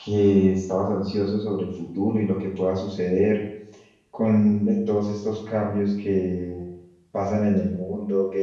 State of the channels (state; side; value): identical; both; correlation 1.00